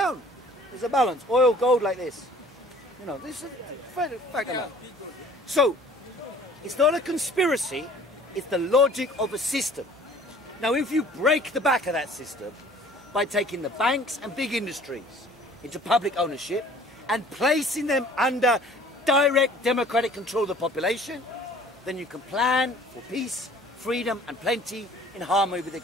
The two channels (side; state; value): right; noise; hum, 28 dB below the sound